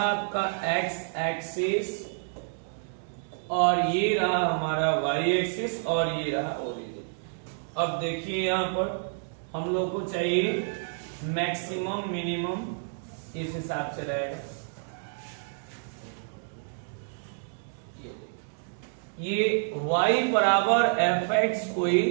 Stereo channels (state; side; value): silent; left; digital silence